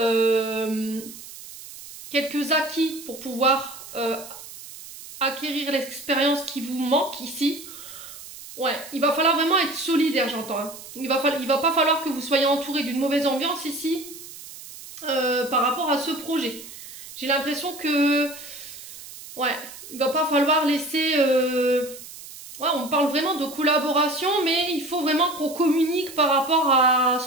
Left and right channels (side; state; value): right; noise; hiss, 15 dB below the sound